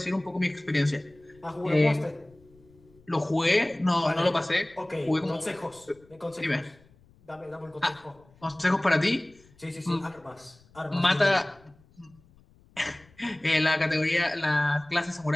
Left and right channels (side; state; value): left; noise; rumble, 29 dB below the sound